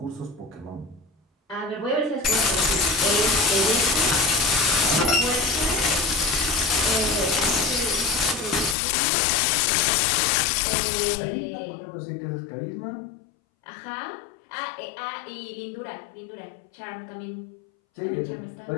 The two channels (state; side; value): drops out; right; at 8.8 s